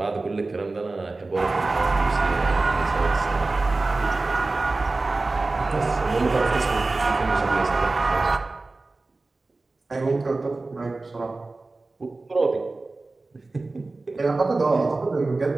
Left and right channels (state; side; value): quieter; left; 3.4 dB